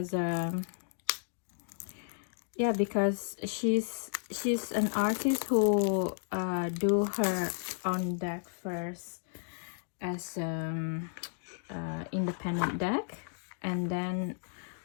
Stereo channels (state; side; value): silent; right; digital silence